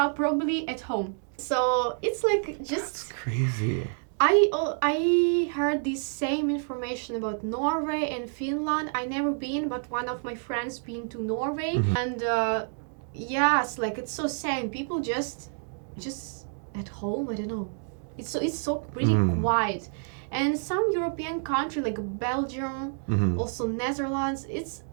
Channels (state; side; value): silent; left; 59 dB below the other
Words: probably at home. So it's like just That's crazy. I heard this same information about Norway and Finland. I never been, but one of my friends been to Norway, and yes, like it's so same. People just at home. I don't know. It's so pretty quiet, and some European country like Belgium, also Netherlands. It's